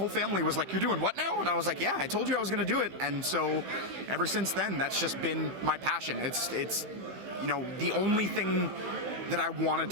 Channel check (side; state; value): left; late; 15 ms